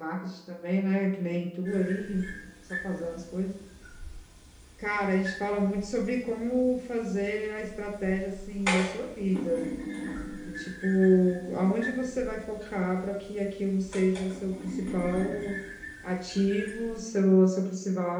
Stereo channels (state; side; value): identical; both; correlation 1.00